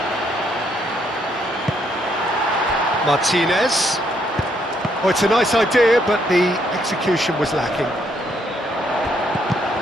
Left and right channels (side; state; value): both; normal; correlation 0.72